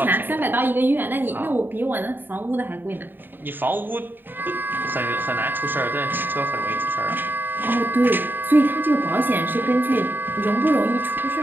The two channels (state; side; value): late; left; 0.094 ms